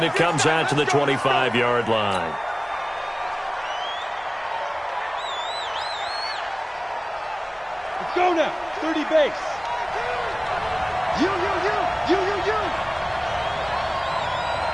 it comes out to the 25-yard line. Let's go now. 30 base. You.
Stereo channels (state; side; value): identical; both; correlation 1.00